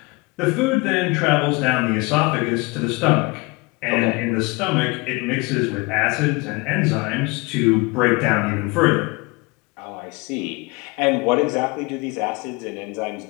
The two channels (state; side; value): quieter; right; 26.5 dB